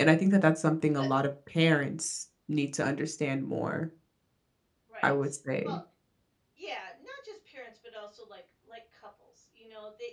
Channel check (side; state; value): both; identical; correlation 1.00